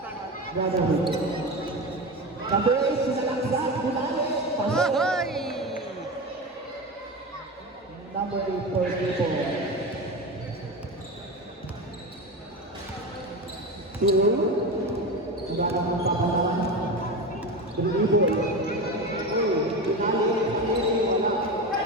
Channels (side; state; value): both; normal; correlation 0.22